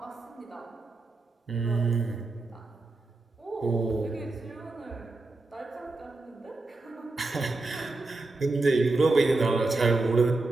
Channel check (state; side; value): quieter; left; 3.2 dB